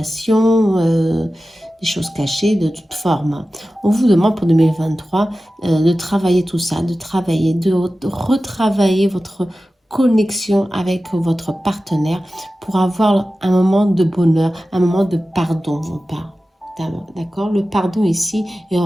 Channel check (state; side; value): normal; both; correlation 0.95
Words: des choses cachées de toute forme. On vous demande pour 2023 de travailler tout ça, de retravailler votre connexion avec votre partenaire pour avoir un moment de bonheur, un moment de pardon, on parle. D'accord? Le pardon ici est un